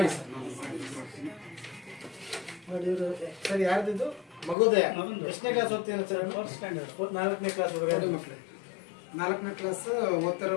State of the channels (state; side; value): drops out; right; at 4.5 s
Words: ಸರ್ ಯಾರ್ದಿದ್ದು ಮಗುದಯ ಎಷ್ಟನೇ ಕ್ಲಾಸ್ ಓದ್ತೀರ ಸರ್? 4ನೇ ಕ್ಲಾಸ್ ಹುಡುಗರು ಮಕ್ಕಳು 4ನೇ ಕ್ಲಾಸ್ ಓದ್ತಿರೋ